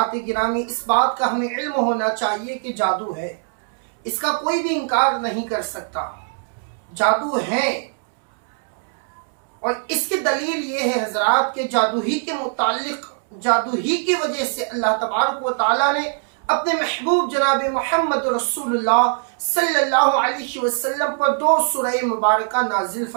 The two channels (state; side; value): silent; left; 65 dB below the other